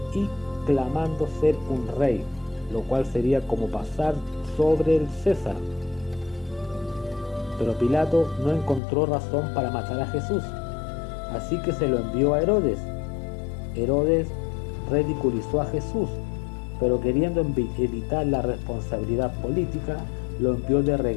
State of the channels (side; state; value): right; drops out; at 8.8 s